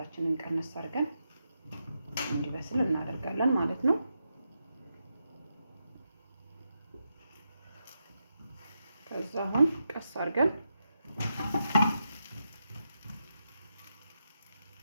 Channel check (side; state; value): both; inverted; correlation -0.85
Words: ቀነስ አድርገን እንዲበስል እናደርጋለን ማለት ነው። ከዛ አሁን ቀስ አድርገን